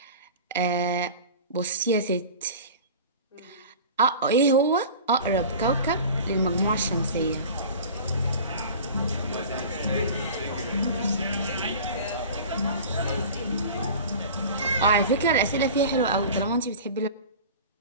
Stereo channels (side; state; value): both; inverted; correlation -0.38